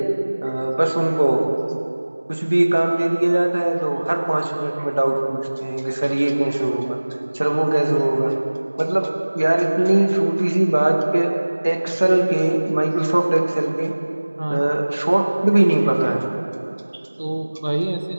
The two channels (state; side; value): inverted; both; correlation -1.00